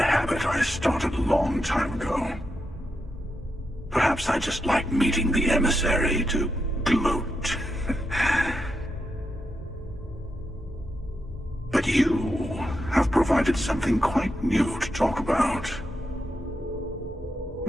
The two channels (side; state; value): both; normal; correlation 0.85